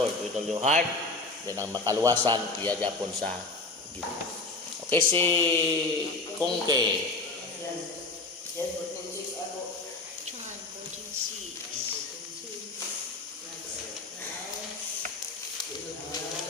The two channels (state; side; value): quieter; right; 3.4 dB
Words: with all your heart, then ang makaluwasan iya gyapon sa Ginoo. Okay, si Kungke. John 14:6.